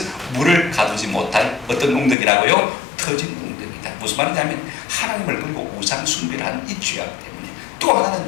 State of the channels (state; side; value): drops out; right; at 2.1 s